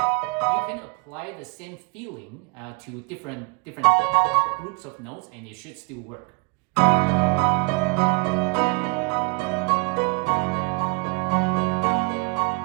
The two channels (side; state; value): left; quieter; 30.9 dB